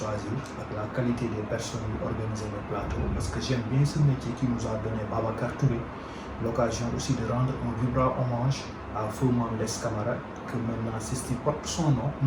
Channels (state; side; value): identical; both; correlation 1.00